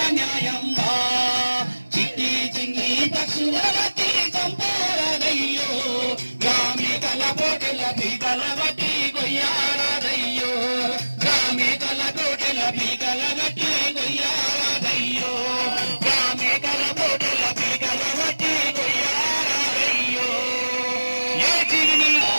న్యాయంబా. చిట్టి చిన్ని పక్షుల బట్టి చంపారయ్యో, గ్రామికల కోటెల బీగల బట్టి కొయ్యారయ్యో, గ్రామికల కోటెల బీగల బట్టి కొయ్యారయ్యో, గ్రామికల కోటెల బీగల బట్టి కొయ్యారయ్యో. ఏ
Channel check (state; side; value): inverted; both; correlation -1.00